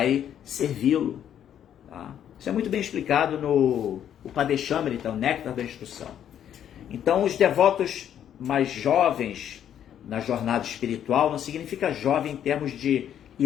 servi-lo, tá? Isso é muito bem explicado no Upadeshamrita, o Néctar da Instrução. Então, os devotos mais jovens na jornada espiritual não significa jovem em termos de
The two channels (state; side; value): quieter; right; 9.9 dB